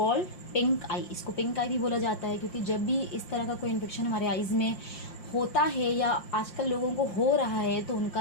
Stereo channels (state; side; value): late; right; 5.7 ms